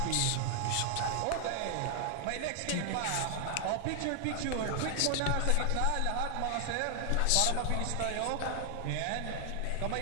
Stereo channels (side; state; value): both; different; correlation 0.00